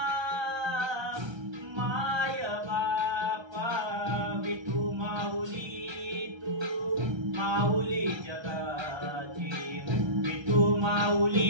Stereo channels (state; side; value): late; left; 1.3 ms